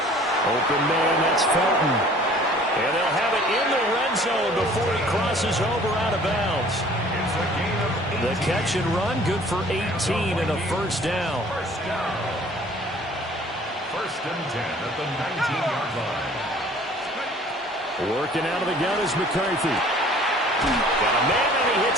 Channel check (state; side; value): normal; both; correlation 0.52